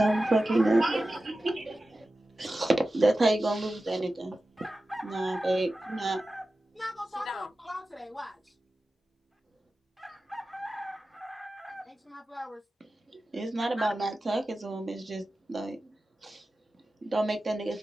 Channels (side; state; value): both; normal; correlation 0.94